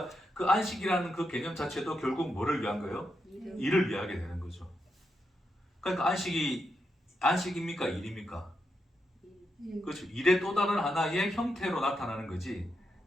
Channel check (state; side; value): normal; both; correlation 0.84